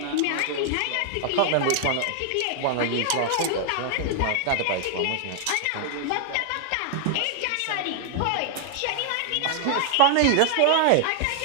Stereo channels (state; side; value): different; both; correlation -0.01